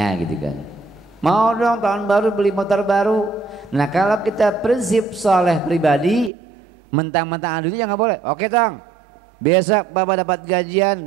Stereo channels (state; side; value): drops out; left; at 6.3 s